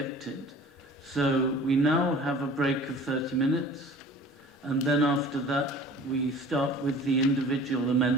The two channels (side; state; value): both; normal; correlation 0.45